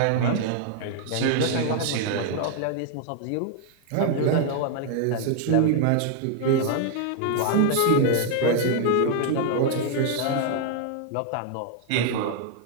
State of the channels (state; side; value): different; both; correlation 0.00